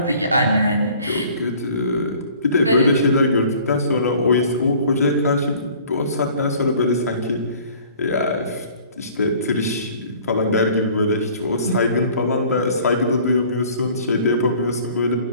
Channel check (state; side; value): inverted; both; correlation -0.52